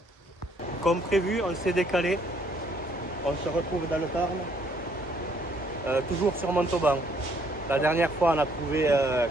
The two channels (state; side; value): normal; both; correlation 0.66